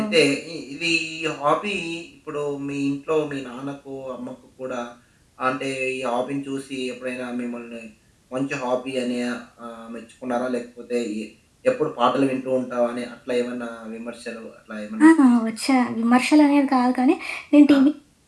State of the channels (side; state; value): both; identical; correlation 1.00